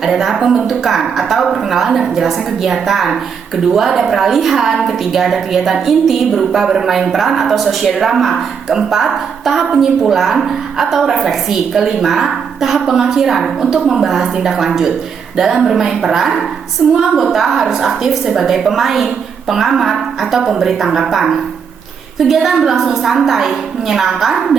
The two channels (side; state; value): left; quieter; 6.7 dB